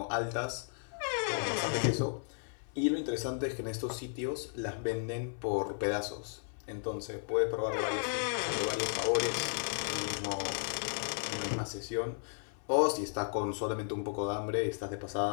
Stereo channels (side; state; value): right; silent; 55 dB below the other